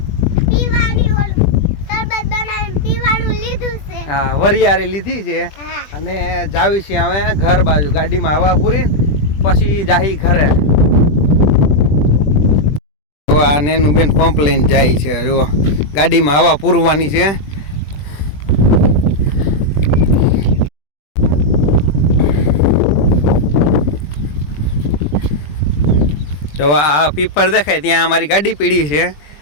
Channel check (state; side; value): late; right; 20 ms